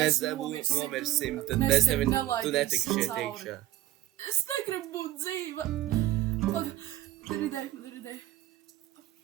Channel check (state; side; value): quieter; left; 14.9 dB